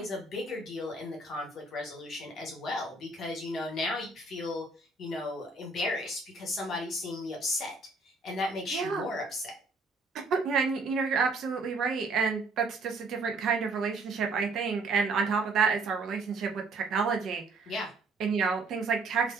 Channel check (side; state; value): left; quieter; 3.4 dB